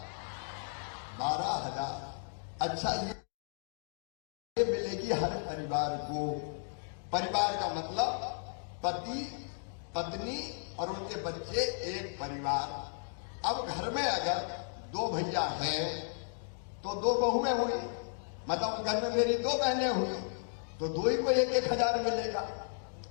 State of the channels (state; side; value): silent; right; digital silence